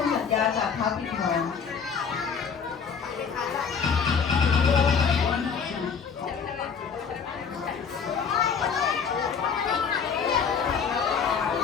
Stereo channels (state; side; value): quieter; right; 6.3 dB